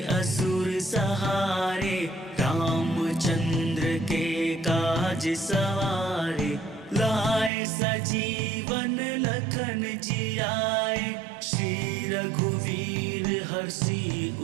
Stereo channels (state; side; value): drops out; left; at 7.5 s